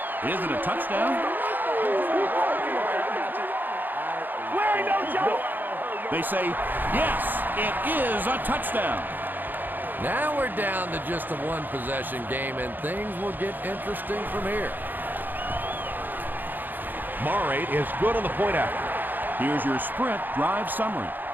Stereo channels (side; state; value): left; late; 0.088 ms